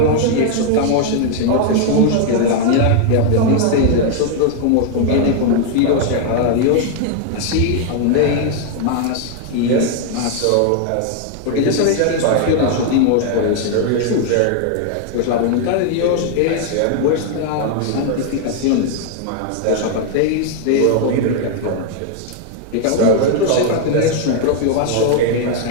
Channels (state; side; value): different; both; correlation 0.00